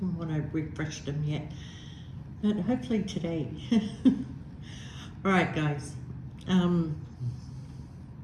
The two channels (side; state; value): both; identical; correlation 1.00